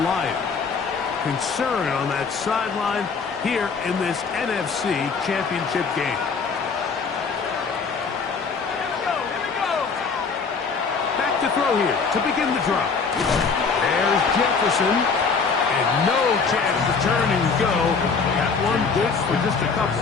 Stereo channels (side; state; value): right; quieter; 5.2 dB